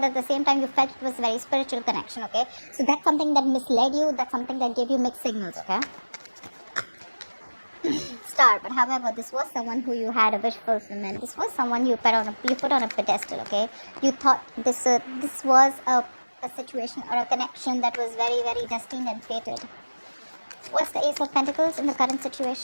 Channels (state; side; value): inverted; both; correlation -1.00